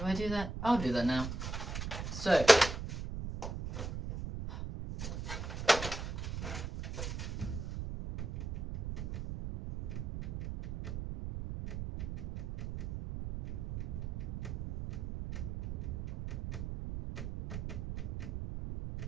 I do that? I'll do that now. So,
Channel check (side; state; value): right; noise; rumble, 5 dB below the sound